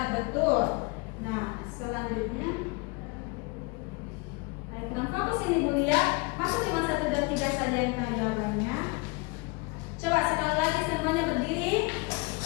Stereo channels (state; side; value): quieter; right; 27.1 dB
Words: betul. Nah, selanjutnya kurang fokus ini dulu ya. Masa cuma 1 dan 3 saja yang tahu jawabannya? Coba sekali lagi semuanya berdiri.